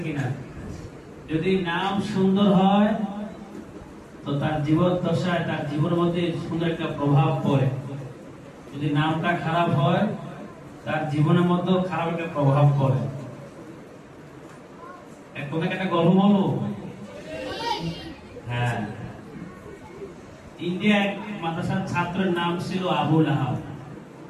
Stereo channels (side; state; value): both; identical; correlation 1.00